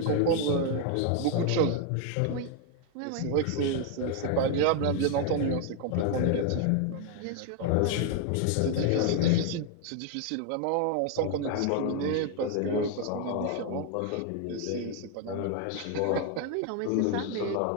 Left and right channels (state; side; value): different; both; correlation 0.01